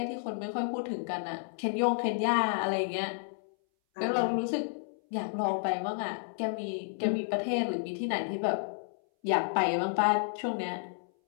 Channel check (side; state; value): right; silent; 57 dB below the other